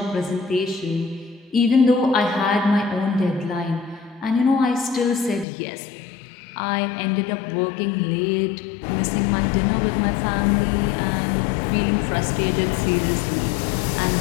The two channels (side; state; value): right; drops out; at 5.5 s